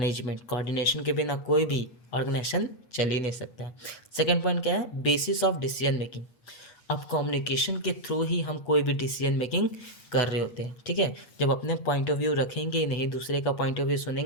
Coordination के बिना कोई भी ऑर्गेनाइजेशन चल ही नहीं सकता है। सेकेंड पॉइंट क्या है, बेसिस ऑफ डिसीजन मेकिंग। अब कम्युनिकेशन के थ्रू ही हम कोई भी डिसीजन मेकिंग कर रहे होते हैं। ठीक है, जब अपने पॉइंट ऑफ व्यू रखेंगे नहीं, दूसरे का पॉइंट ऑफ व्यू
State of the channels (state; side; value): late; right; 8.4 ms